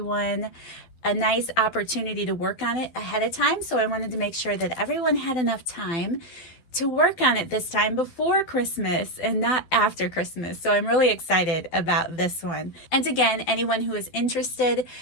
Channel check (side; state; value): right; late; 12 ms